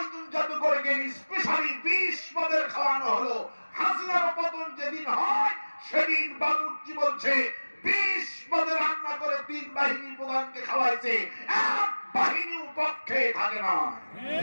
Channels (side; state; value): both; inverted; correlation -1.00